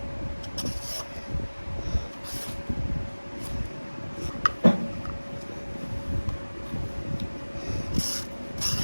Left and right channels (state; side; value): inverted; both; correlation -1.00